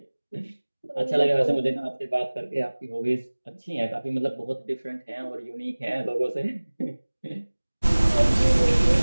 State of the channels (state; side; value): inverted; both; correlation -1.00